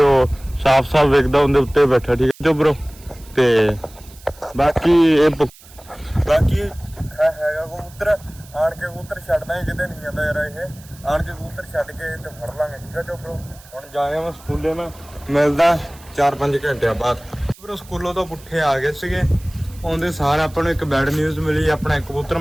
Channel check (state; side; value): noise; right; hiss, 23 dB below the sound